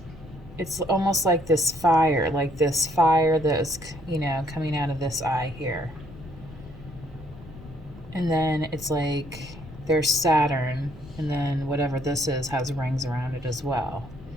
It's almost like this fire that's, coming out of this eye here. And then it's like there's Saturn, and then whatever this is has rings around it as well.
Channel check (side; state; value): left; noise; rumble, 17 dB below the sound